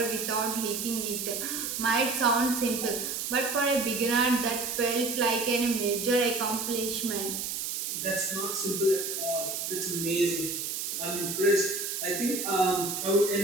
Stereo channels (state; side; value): noise; right; hiss, 3 dB below the sound